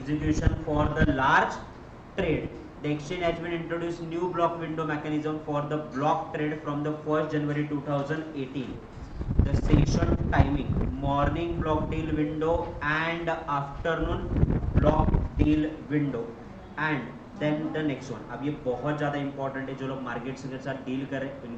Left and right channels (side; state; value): both; identical; correlation 1.00